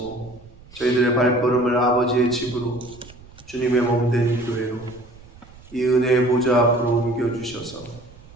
저희들의 발걸음을 아버지의 집으로, 주님의 몸된 교회로, 이 은혜의 보좌 앞으로 옮겨주셔서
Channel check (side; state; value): right; noise; rumble, 22 dB below the sound